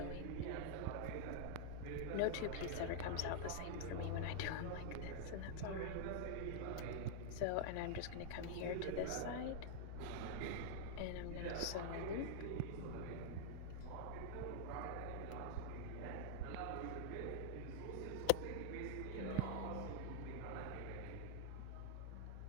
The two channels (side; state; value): both; different; correlation 0.00